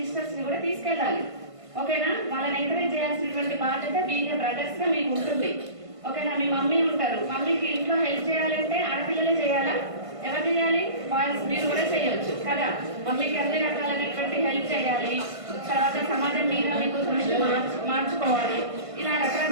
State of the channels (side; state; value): left; late; 1.5 ms